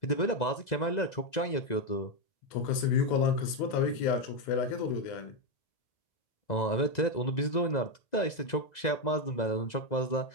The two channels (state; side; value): late; right; 2.0 ms